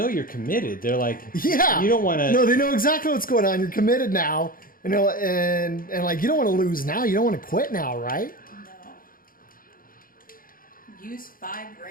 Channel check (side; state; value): right; late; 0.41 ms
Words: you're committed. They're like, Yeah. you don't want to. No, they know exactly what's going on. You're committed now. You know, and like you don't want to lose now. You don't want to quit now, right? No. Use 5